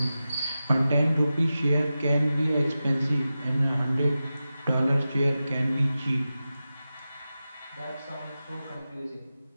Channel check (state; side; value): inverted; both; correlation -0.93